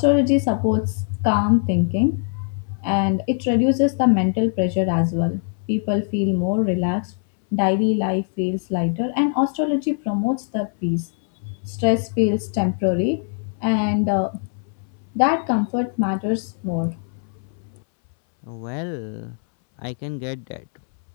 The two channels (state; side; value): silent; right; 64 dB below the other